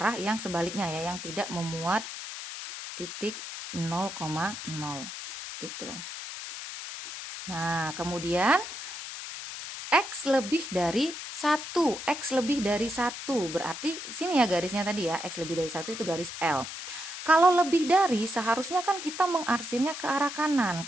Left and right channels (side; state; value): left; noise; hiss, 9 dB below the sound